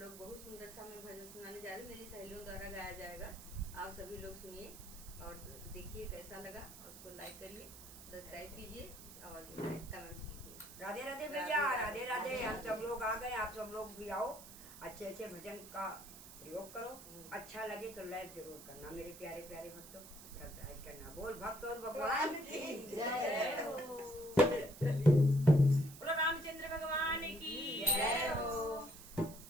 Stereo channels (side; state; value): right; noise; hiss, 15 dB below the sound